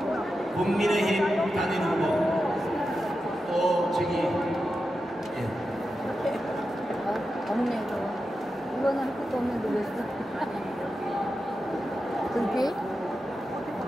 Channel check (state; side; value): normal; both; correlation 0.90